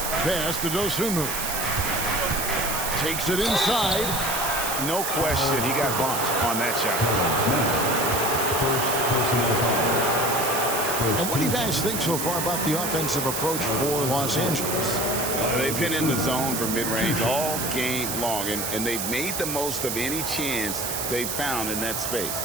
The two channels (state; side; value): noise; right; hiss, 3 dB below the sound